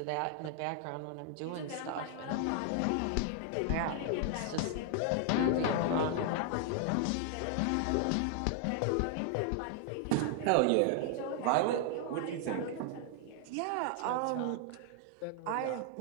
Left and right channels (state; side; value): different; both; correlation 0.00